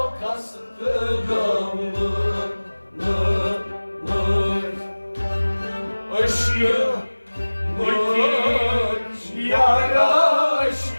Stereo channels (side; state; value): both; inverted; correlation -1.00